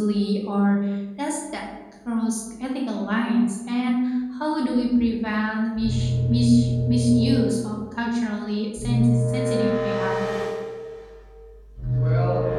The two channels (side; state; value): both; identical; correlation 1.00